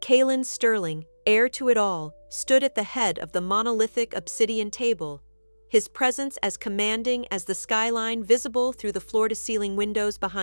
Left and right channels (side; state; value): both; inverted; correlation -1.00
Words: Calum Sterling, heir to it all, stood at the head of the monolithic obsidian table, his presence as commanding as the skyline visible through the floor-to-ceiling windows